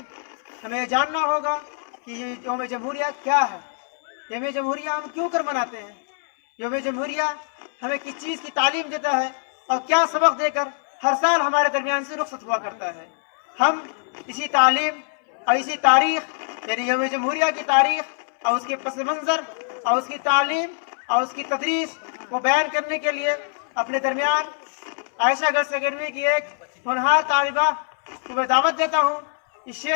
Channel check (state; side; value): silent; right; 62 dB below the other